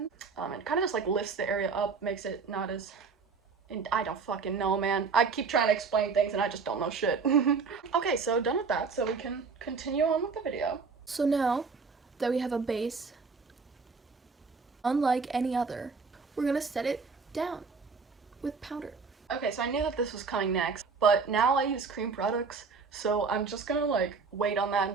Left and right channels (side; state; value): left; quieter; 5.0 dB